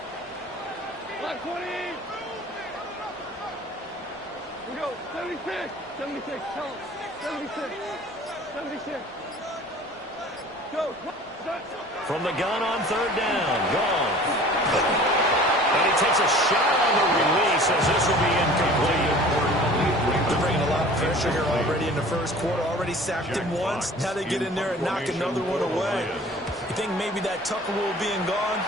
We go, 76, 76, tell him, 76, 76. Go. From the gun on 3rd down, gone. And he takes a shot on the release as this will be incomplete. They're bringing a lot of pressure here already in the 1st quarter. Already sacked him once. Now they get in there and knock another one away. You think maybe that Tucker rule being gone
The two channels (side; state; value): both; normal; correlation 0.46